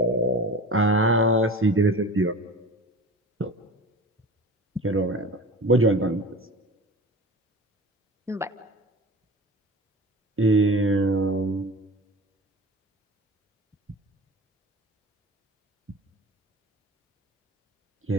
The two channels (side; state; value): both; normal; correlation 0.35